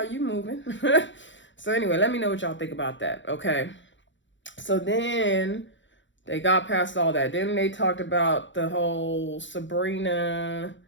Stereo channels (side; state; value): right; late; 0.54 ms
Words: you moving. So anyway, let me know what y'all think about that. Okay. So then they got past all that. Then they talked about the whole Sabrina.